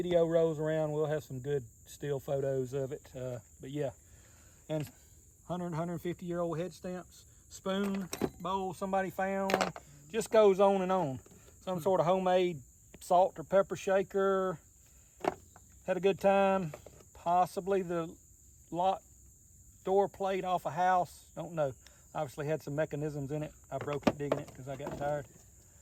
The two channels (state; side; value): identical; both; correlation 1.00